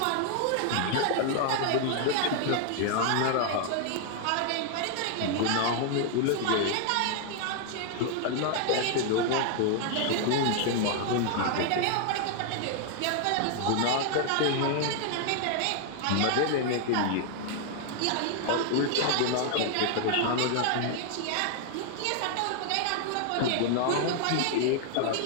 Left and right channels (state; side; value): different; both; correlation 0.00